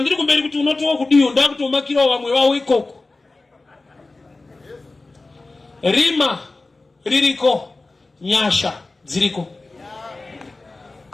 kumberi kuti unotowa kudiyo, ndakutomakirawo vamwe vavo ikoko. Rima ririko, nyasha dziriko.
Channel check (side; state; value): right; quieter; 3.3 dB